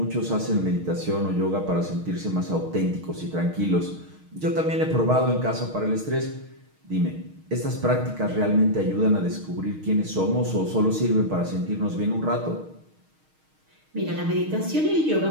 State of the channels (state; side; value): late; left; 6.4 ms